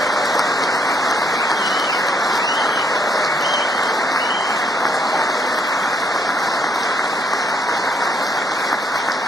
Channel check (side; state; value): both; normal; correlation 0.71